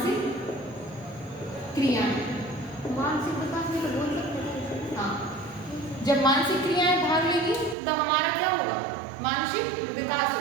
क्रियाएं, मानसिक विकास में तो बोल सकते हैं, हाँ। जब मानसिक क्रियाएं भाग लेगी तो हमारा क्या होगा, मानसिक विकास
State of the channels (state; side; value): drops out; left; at 7.8 s